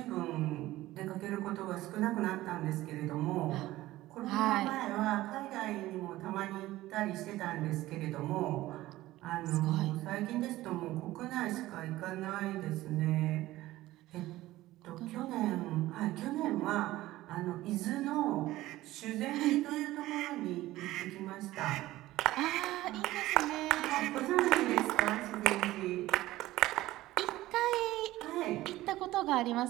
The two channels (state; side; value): quieter; left; 16.6 dB